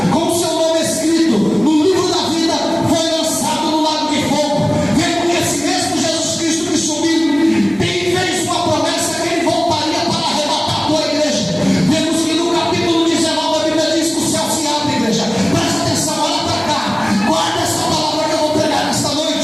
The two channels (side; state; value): right; noise; hum, 25 dB below the sound